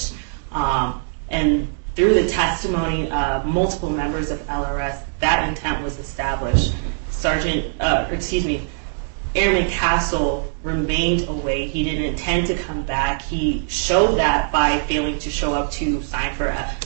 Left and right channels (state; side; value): silent; left; digital silence